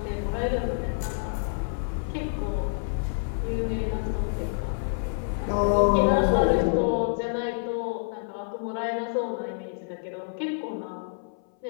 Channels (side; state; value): right; silent; 58 dB below the other